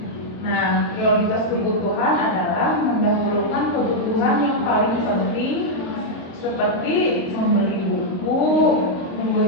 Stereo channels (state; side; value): late; right; 22 ms